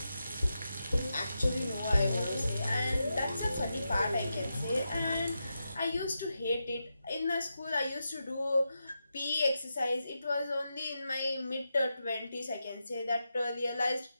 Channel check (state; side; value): inverted; both; correlation -0.88